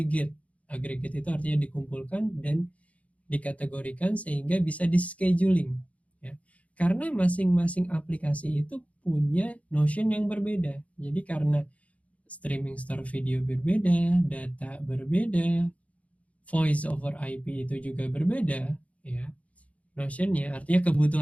Aggregate itu artinya dikumpulkan dan dikategorikan sehingga bisa di-scheduling. Ya. Karena masing-masing aplikasi itu punya notion yang berbeda. Jadi karena streaming store video berbeda, data berbeda, voice over IP itu juga berbeda, ya. Notionnya artinya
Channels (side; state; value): right; late; 0.066 ms